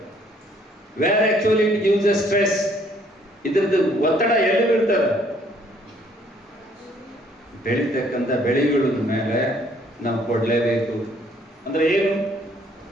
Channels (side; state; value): both; normal; correlation 0.63